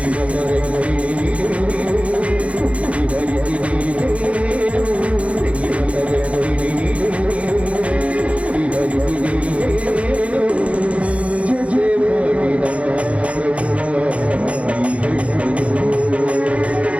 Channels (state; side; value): late; left; 0.063 ms